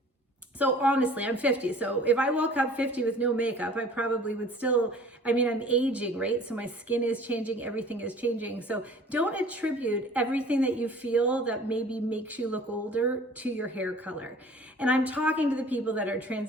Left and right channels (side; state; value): both; normal; correlation 0.48